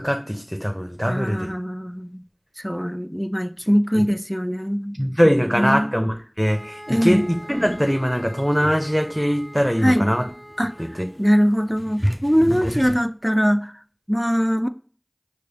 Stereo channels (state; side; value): identical; both; correlation 1.00